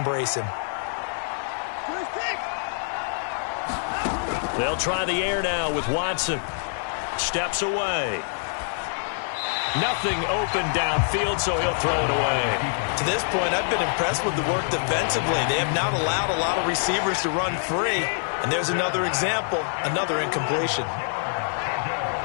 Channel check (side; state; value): right; silent; digital silence